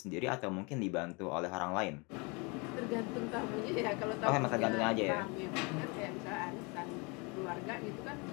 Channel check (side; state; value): right; quieter; 29.8 dB